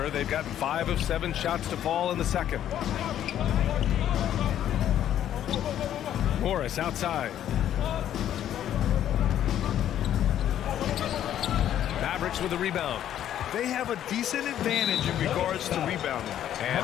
they've gotten 5 of 7 shots to fall in the second. Morris outside. Mavericks with the rebound. They have a decent advantage in regards to rebounding. And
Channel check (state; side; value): quieter; right; 11.0 dB